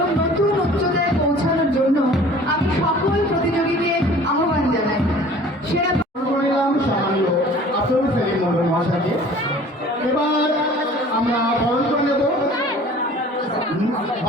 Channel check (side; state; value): both; normal; correlation 0.48